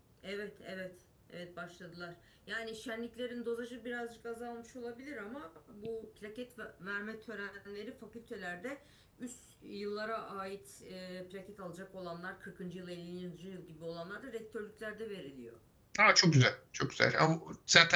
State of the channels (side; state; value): both; identical; correlation 1.00